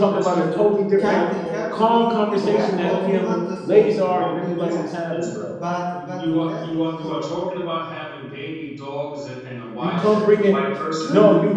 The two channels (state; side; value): identical; both; correlation 1.00